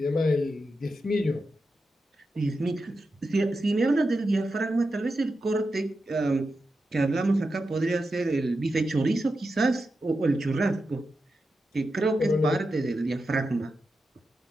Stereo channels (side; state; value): both; normal; correlation 0.89